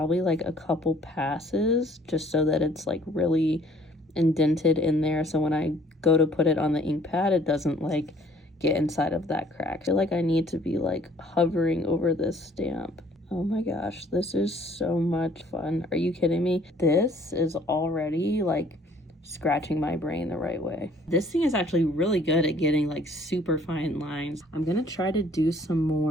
like a couple passes just so that it's like really indented in there. So when I go to put it on the ink pad, it doesn't like get inside of that crack. I feel like I need to be like hovering over this stamp. Oh my gosh, this is so much fun. Are you kidding me? This is already like scratching my brain the right way. This thing is actually really good at getting like super fine lines. I'm gonna try to do some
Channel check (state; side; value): normal; both; correlation 0.58